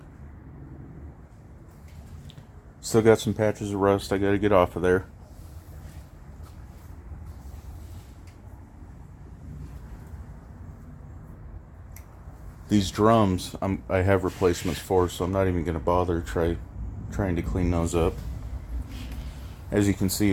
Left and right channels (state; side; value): identical; both; correlation 1.00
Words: Still got some patches of rust I gotta get off of there. These drums I have replacements for, so I'm not even gonna bother trying to clean those up. As you can see,